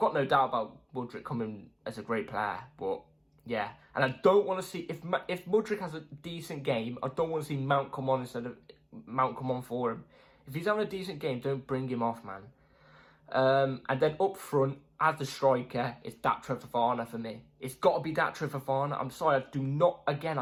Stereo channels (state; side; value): identical; both; correlation 1.00